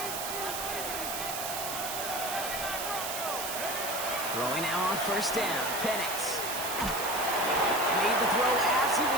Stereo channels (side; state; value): right; noise; hiss, 4 dB below the sound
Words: Throwing now on first down. Penix made the throw as he